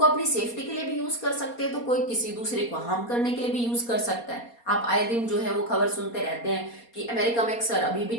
अपनी सेफ्टी के लिए भी यूज कर सकते हैं, तो कोई किसी दूसरे को हार्म करने के लिए भी यूज कर सकता है। आप आए दिन जो है वो खबर सुनते रहते हैं कि अमेरिका में अक्सर अभी भी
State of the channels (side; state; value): right; late; 4.2 ms